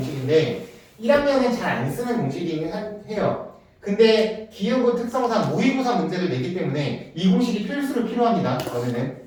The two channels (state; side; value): identical; both; correlation 1.00